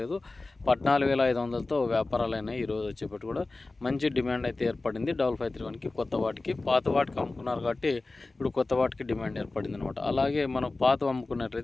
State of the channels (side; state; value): right; quieter; 3.3 dB